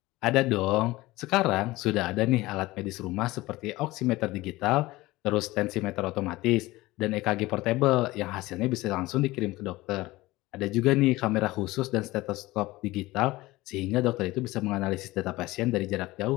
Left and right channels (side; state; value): right; quieter; 19.4 dB